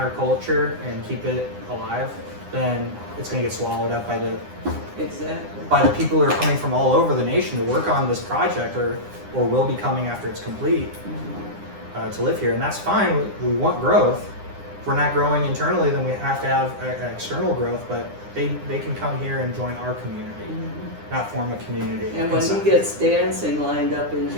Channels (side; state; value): left; late; 9.8 ms